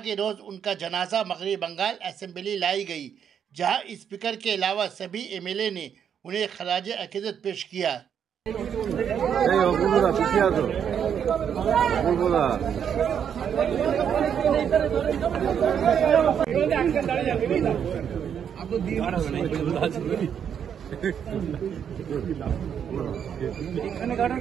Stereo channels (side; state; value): left; quieter; 8.2 dB